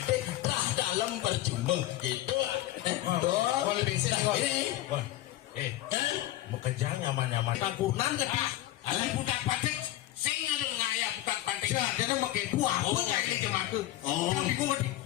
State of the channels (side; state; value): right; quieter; 15.2 dB